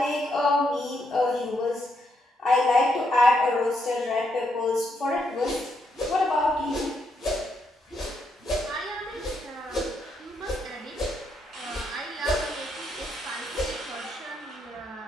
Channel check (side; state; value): both; normal; correlation 0.78